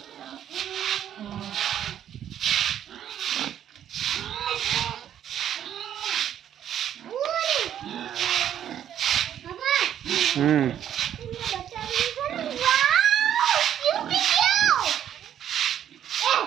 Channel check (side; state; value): left; quieter; 10.2 dB